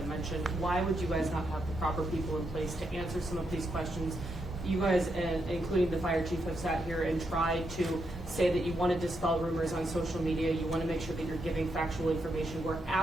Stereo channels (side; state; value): both; normal; correlation 0.81